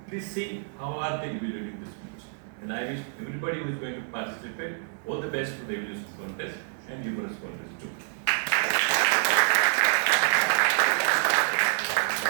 Please see how are they evaluating this speech. And I wish everybody who is going to participate all the best for the evaluation contest and humorous contest too.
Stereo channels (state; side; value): silent; left; 60 dB below the other